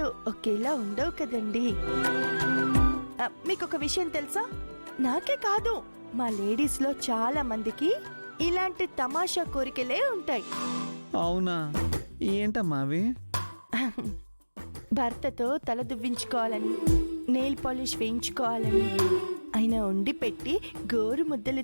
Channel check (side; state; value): both; inverted; correlation -1.00